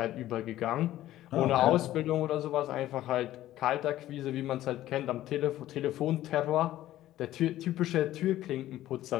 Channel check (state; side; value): quieter; right; 14.1 dB